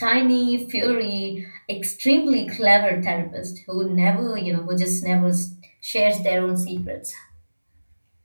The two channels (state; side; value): inverted; both; correlation -1.00